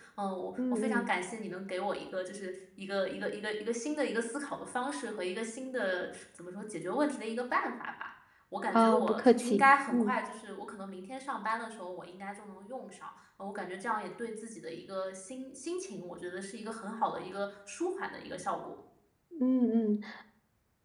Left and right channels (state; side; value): identical; both; correlation 1.00